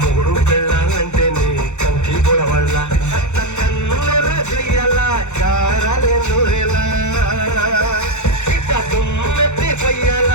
పెళ్ళాలంటే నీ కంకి పొడవళ్ళ కన్నుల చెయ్యాల కారాలే నూరెలా ఇట్ట దుమ్మెత్తి పొయ్యాల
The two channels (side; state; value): right; late; 0.83 ms